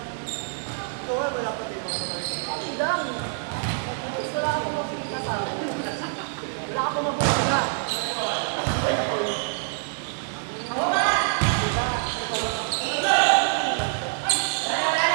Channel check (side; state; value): left; silent; 61 dB below the other